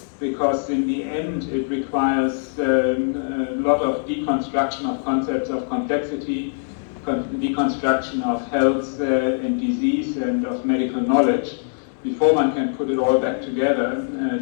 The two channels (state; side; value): silent; right; digital silence